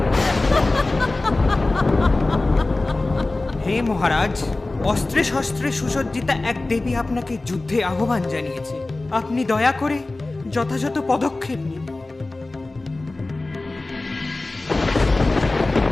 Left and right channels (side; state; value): right; quieter; 3.0 dB